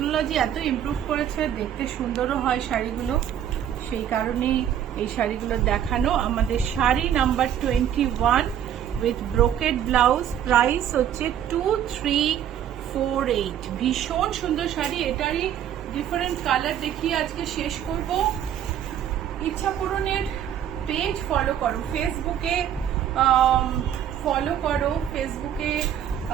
এত ইমপ্রুভ করেছে, দেখতে সুন্দরও হয় শাড়িগুলো, সেই কারণেই এই শাড়িগুলো দেখানো। আমাদের sari number 21 with brocade blouse, price হচ্ছে 2348। ভীষণ সুন্দর শাড়ি, এটারই ডিফারেন্ট কালার দেখিয়ে আজকে শেষ করব। ইচ্ছা পূরণের পেজ ফলো করো, ফেসবুকে ফলো করো, ফেসবুকে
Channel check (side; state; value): left; quieter; 10.1 dB